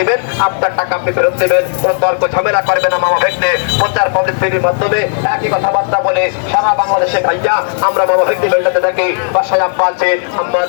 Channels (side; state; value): right; silent; digital silence